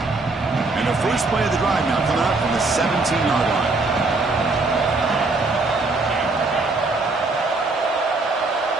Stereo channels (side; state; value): left; quieter; 3.5 dB